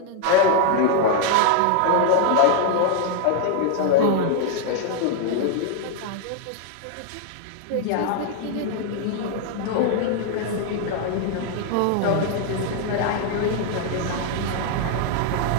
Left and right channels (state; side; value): different; both; correlation 0.00